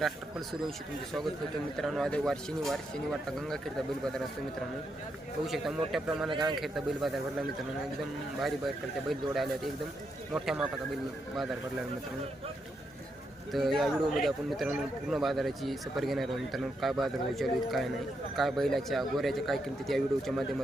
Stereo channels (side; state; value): both; normal; correlation 0.81